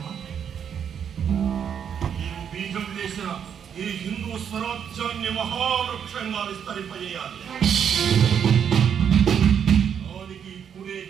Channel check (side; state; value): left; quieter; 8.1 dB